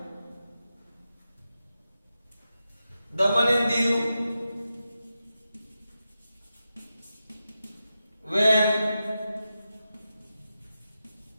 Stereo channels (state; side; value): inverted; both; correlation -0.90